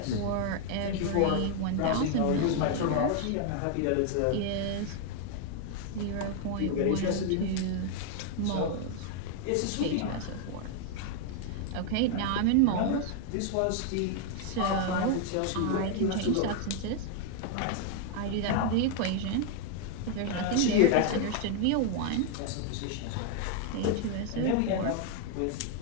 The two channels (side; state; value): both; different; correlation 0.00